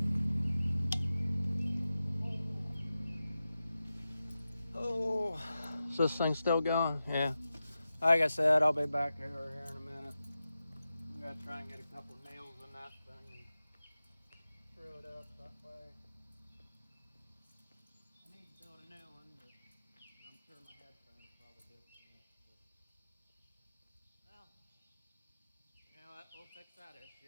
Oh, is this thing still going? Yeah. Like I said, I'll be back here in a minute. I'm gonna try and get a couple nails in that thing and screw it up that way. I need to build a new one, but I'm sure my headphones will probably disconnect. But, well, you know what? We'll fix that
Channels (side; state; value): both; inverted; correlation -0.92